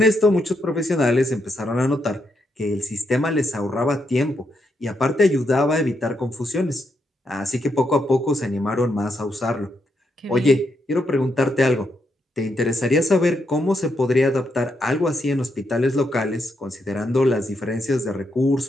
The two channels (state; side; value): normal; both; correlation 0.80